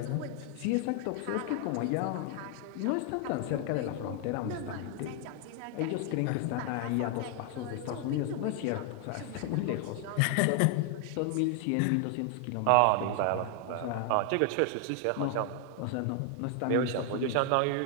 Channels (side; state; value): both; different; correlation 0.00